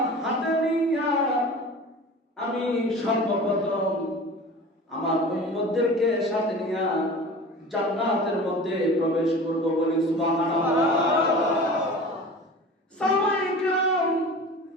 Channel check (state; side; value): normal; both; correlation 0.38